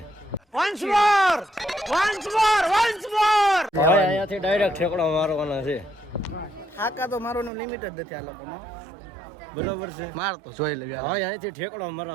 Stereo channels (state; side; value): drops out; left; at 7.5 s